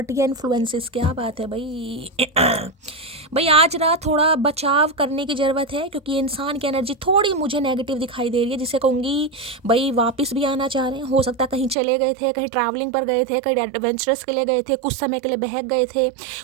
एंड इन्फ्लुएंसेस। क्या बात है भाई। भाई आज रात थोड़ा बचाव करने की ज़रूरत है, क्योंकि इंसान की एनर्जी थोड़ी मुझे नेगेटिव दिखाई दे रही है, जिसे कहूँगी भाई वापस भी आना चाह रहे हैं। हो सकता है कहीं चले गए थे, कहीं ट्रैवलिंग पर गए थे, कहीं एडवेंचरस के लिए गए थे, कुछ समय के लिए बहक गए थे,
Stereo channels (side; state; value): left; drops out; at 11.8 s